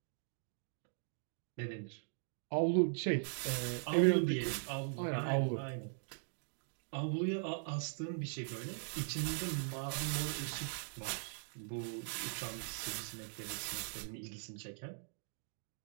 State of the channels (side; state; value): left; silent; digital silence